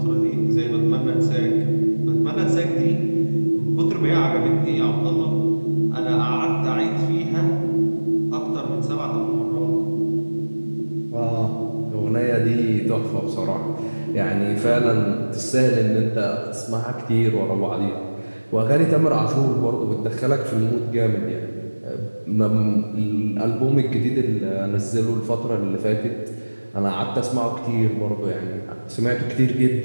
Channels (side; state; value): both; inverted; correlation -1.00